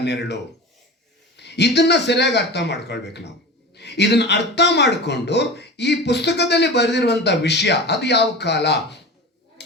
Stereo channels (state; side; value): normal; both; correlation 0.32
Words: ನೆರಳು, ಇದನ್ನು ಸರಿಯಾಗಿ ಅರ್ಥ ಮಾಡ್ಕೊಳ್ಬೇಕು ನಾವು. ಇದನ್ನು ಅರ್ಥ ಮಾಡಿಕೊಂಡು ಈ ಪುಸ್ತಕದಲ್ಲಿ ಬರೆದಿರುವಂಥ ವಿಷಯ, ಅದು ಯಾವ ಕಾಲ,